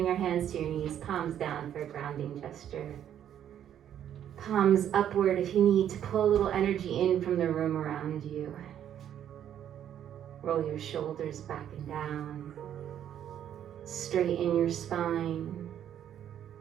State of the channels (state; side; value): quieter; left; 10.1 dB